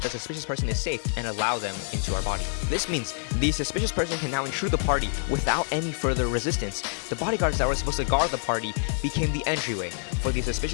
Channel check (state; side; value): silent; right; digital silence